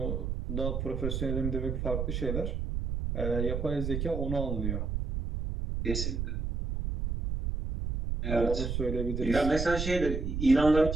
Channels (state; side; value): noise; right; rumble, 2 dB below the sound